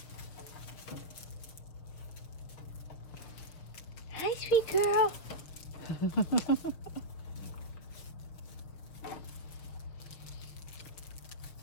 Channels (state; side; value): late; right; 6.3 ms